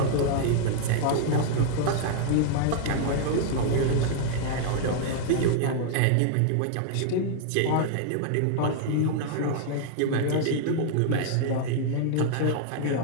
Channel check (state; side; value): different; both; correlation -0.01